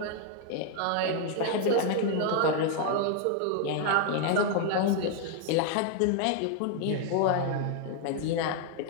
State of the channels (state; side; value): different; both; correlation 0.00